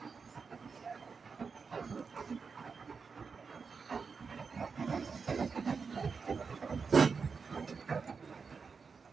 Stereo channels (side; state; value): left; quieter; 5.2 dB